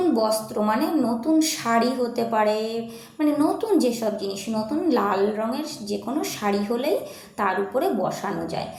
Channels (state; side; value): identical; both; correlation 1.00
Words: বস্ত্র, নতুন শাড়ি হতে পারে, নতুন যেসব জিনিস, নতুন লাল রঙের যে কোনো শাড়ি হলেই তার উপরে বসানো যায়।